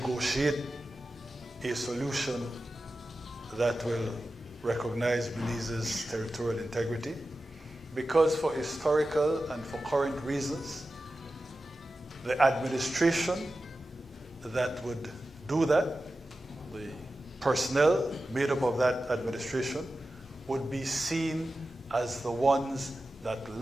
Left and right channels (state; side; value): normal; both; correlation 0.93